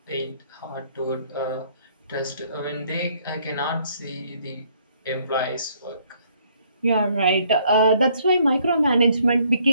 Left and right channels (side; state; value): both; inverted; correlation -0.65